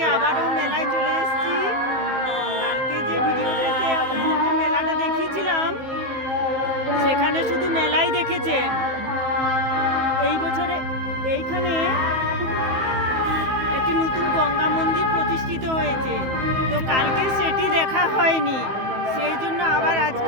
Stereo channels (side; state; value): left; late; 15 ms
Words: আবারও মেলায় চলে এসেছি। কালকে যে ভিডিওটাতে আপনাদেরকে মেলাটা দেখিয়েছিলাম, সেখানে শুধু মেলাই দেখেছেন। এই বছরে এইখানে একটি নতুন গঙ্গা মন্দির প্রতিষ্ঠিত হয়েছে, তো কালকে সেটি দেখা হয়নি, সেই জন্য আবার